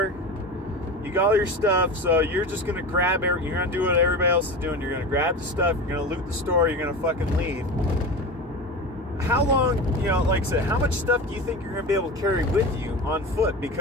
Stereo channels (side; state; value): both; normal; correlation 0.28